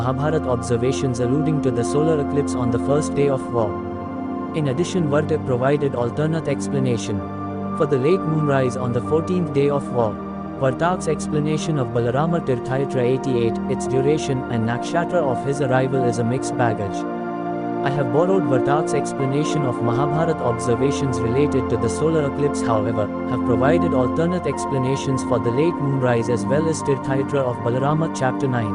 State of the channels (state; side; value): identical; both; correlation 1.00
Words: observations alluding to the solar eclipse on the first day of war. In addition, Vartik provided alternate explanation for the late moonrise on the 14th day of war. Vartak's explanation of Balarama Tirthayatra 88, its duration and nakshatra of his arrival is a mixed baggage. I have borrowed Vartak's explanation of Mahabharata observations related to the solar eclipse, however, have provided alternate explanations for the late moonrise as well as Tirthayatra of Balarama chapter